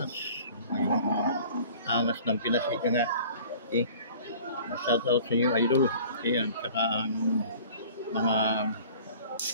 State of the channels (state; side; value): inverted; both; correlation -0.47